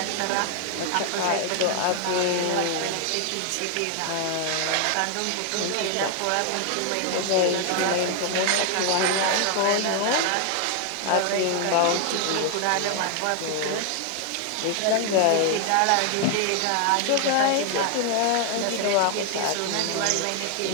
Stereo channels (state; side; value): different; both; correlation 0.00